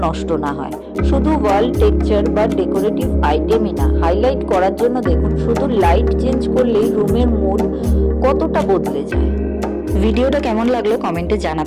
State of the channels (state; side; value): identical; both; correlation 1.00